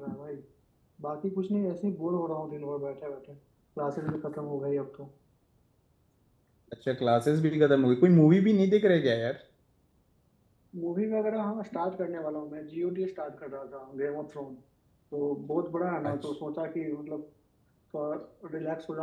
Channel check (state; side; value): identical; both; correlation 1.00